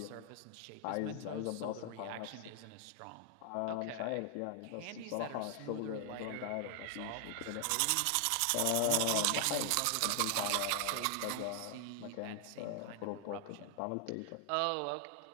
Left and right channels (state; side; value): different; both; correlation 0.00